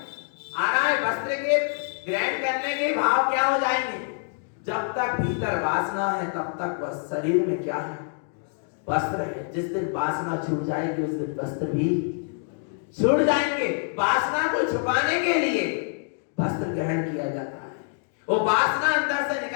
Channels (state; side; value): silent; right; 61 dB below the other